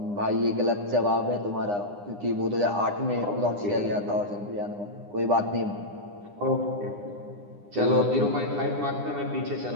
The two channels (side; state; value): left; late; 9.8 ms